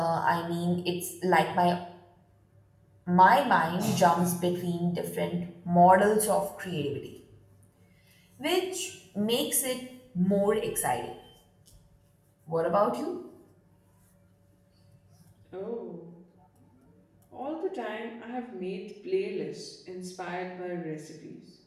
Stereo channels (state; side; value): identical; both; correlation 1.00